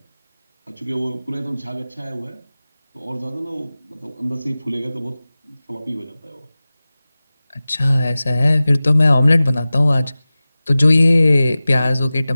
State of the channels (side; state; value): both; inverted; correlation -0.97